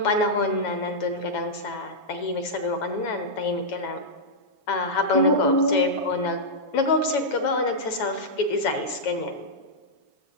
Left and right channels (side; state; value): right; late; 7.1 ms